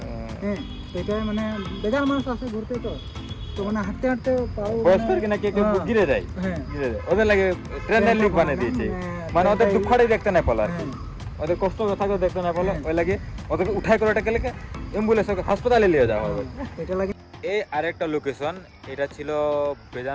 হ্যাঁ এটা মানে বেজার মানুষ আসে ঘুরতে, তো মানে হাঁটতে পাও বয়স্কর কিনা কে গিরে যায়, হ্যাঁ ওদের লাগে ট্রেনের লিক বানিয়ে দিয়েছে, মানে ওদের দুঃখটাই দেখতে না পেলো আর কি, ওদের কষ্ট থাকলে দেখতে না পেলো, ওই লাগে ওদেরকে উঠাই করে এটাকে লেগে অ্যাম্বুলেন্স হাসপাতালে নিয়ে যাওয়া হবে। এটা লাগে। এই আরেকটা লোকেশন, এটা ছিল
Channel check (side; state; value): both; identical; correlation 1.00